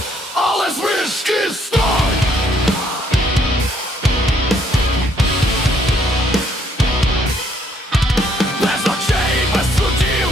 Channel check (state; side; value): normal; both; correlation 0.67